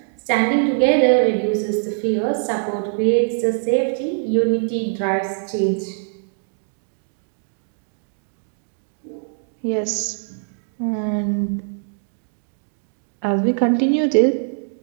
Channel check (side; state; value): left; silent; digital silence